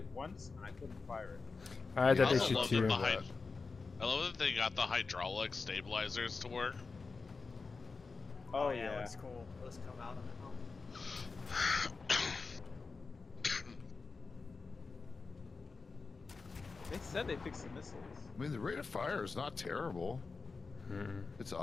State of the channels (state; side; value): quieter; right; 4.3 dB